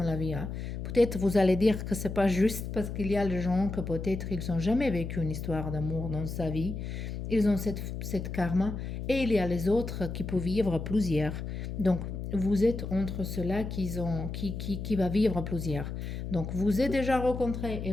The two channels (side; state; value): left; noise; hum, 6 dB below the sound